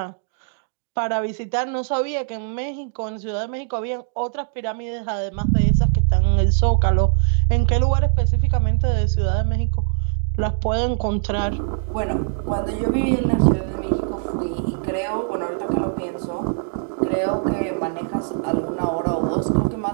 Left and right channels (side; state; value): left; silent; 64 dB below the other